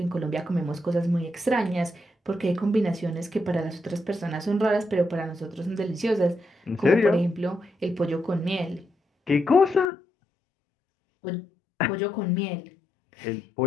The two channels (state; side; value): drops out; right; at 9.9 s